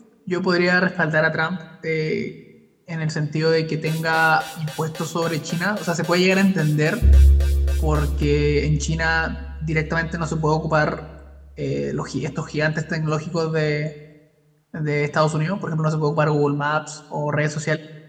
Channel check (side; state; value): both; identical; correlation 1.00